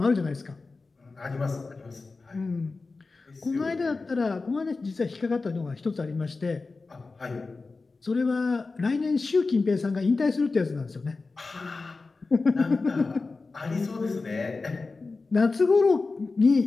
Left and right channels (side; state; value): right; quieter; 3.9 dB